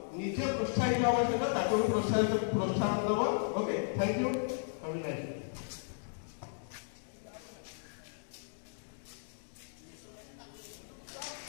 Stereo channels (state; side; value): silent; right; digital silence